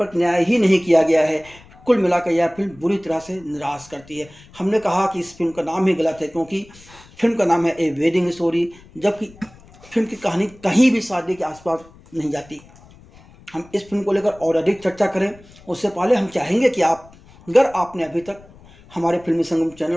न्याय ही नहीं किया गया है। कुल मिलाकर यह फिल्म बुरी तरह से निराश करती है। हमने कहा कि इस फिल्म का नाम ही गलत है क्योंकि फिल्म का नाम है ए वेडिंग स्टोरी, जबकि फिल्म की कहानी कहीं भी शादी के आसपास नहीं जाती। हम इस फिल्म को लेकर और अधिक चर्चा करें उससे पहले हम चाहेंगे कि अगर आपने अभी तक हमारे फिल्मी संगम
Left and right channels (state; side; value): noise; left; rumble, 24 dB below the sound